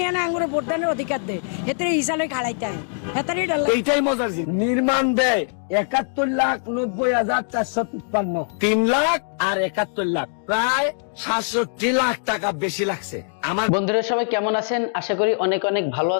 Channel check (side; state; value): right; silent; digital silence